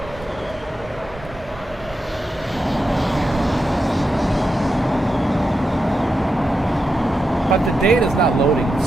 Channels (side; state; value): both; normal; correlation 0.87